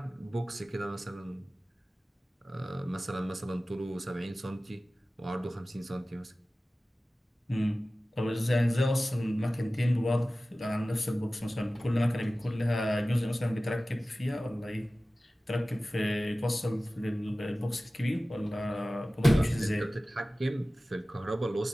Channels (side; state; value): both; normal; correlation 0.96